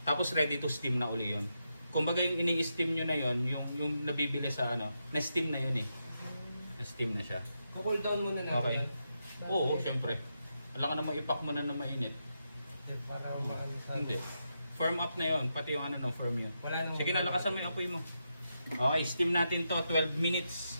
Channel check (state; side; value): inverted; both; correlation -0.85